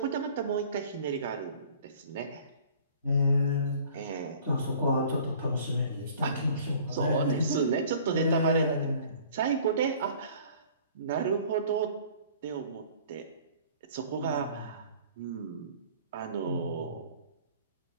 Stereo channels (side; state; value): both; inverted; correlation -0.50